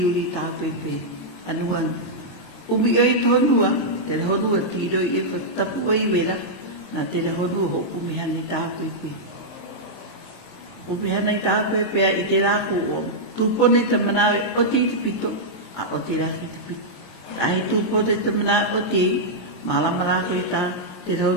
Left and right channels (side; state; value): right; late; 23 ms